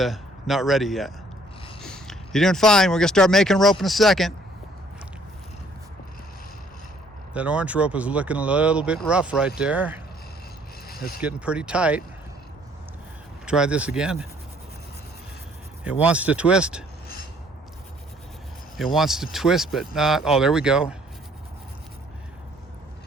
ready yet. You're doing fine. We're going to start making rope in a second. That orange rope is looking a little bit rough right there. It's getting pretty tight. Try this again. It wants to twist. It wants to twist, but not. Oh, there we go.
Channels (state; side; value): normal; both; correlation 0.61